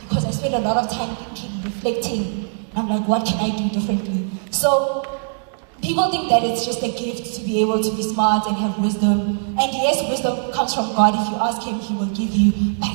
Because I spend a lot of time thinking, reflecting. I'm like, what can I do differently? So people think that it's just a gift to be able to be smart and have wisdom. And yes, wisdom comes from God. If you ask Him, He will give you.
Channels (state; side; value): silent; left; 65 dB below the other